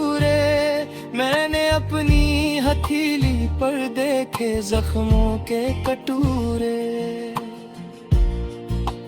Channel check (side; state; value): both; identical; correlation 1.00